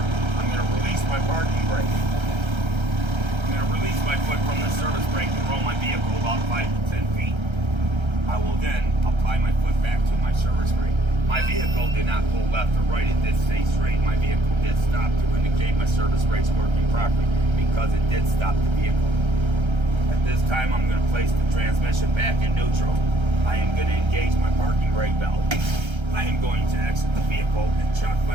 going to release my parking brake. I'm going to release my foot from the service brake and roll my vehicle about 5 to 10 feet. I will then apply my foot back to my service brake. My vehicle did not pull left or right. It did stay straight. My vehicle did stop to indicate my service brake's working properly because it did stop the vehicle. At this time, I'm going to place the transmission back in neutral. I am going to engage my parking brake valve. I am going to exit the vehicle and chock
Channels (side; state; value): left; late; 1.3 ms